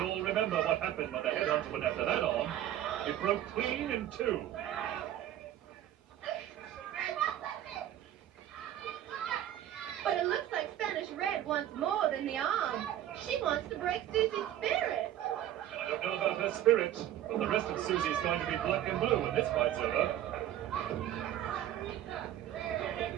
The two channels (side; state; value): left; quieter; 12.2 dB